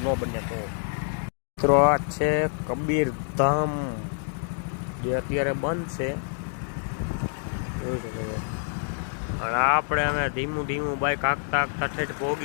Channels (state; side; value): silent; right; digital silence